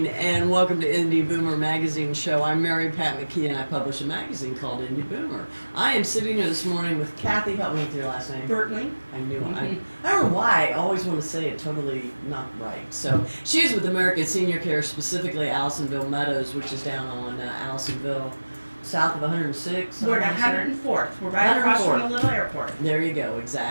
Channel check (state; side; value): inverted; both; correlation -1.00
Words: and welcome to Indy Boomer Magazine Show. I'm Mary Pat McKee and I publish a magazine called Indy Boomer. I am sitting here this morning with Cathy. Help me with your last name. Bertling. I knew it. I don't know why I always want to say it totally not right. So she's with American Senior Care, specifically Allisonville Meadows, which is down on Allisonville, south of 106. We're at 104th. We're right across from the little airport. There you go,